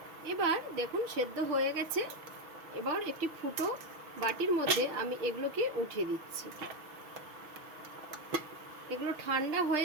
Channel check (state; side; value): late; left; 6.0 ms